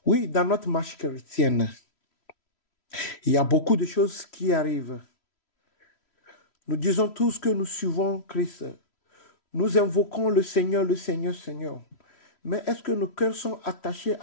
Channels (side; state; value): right; late; 3.1 ms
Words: Oui, dans notre marche chrétienne, il y a beaucoup de choses qui arrivent. Nous disons tous que nous suivons Christ. Nous invoquons le Seigneur, Seigneur. Mais est-ce que nos cœurs sont attachés